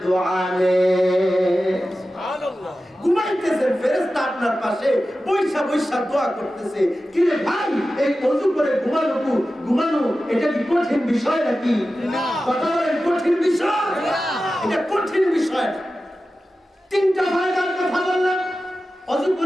দোয়া নেয়। সুবহানাল্লাহ। ঘুমাইতেছেন, ফেরেশতা আপনার পাশে বৈশা বৈশা দোয়া করতেছে। কি রে ভাই, এই ওযু করে ঘুমানো এটা কি কঠিন বিষয় নাকি? না। কথা বলেন, কঠিন বিষয়? এটা কঠিন বিষয়। 3টা ফায়দার কথা বললাম। ওযু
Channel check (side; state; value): both; normal; correlation 0.94